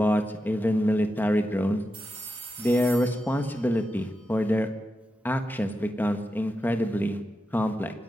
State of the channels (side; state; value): both; normal; correlation 0.89